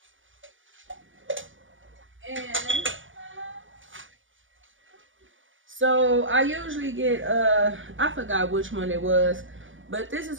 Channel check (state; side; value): late; left; 0.57 ms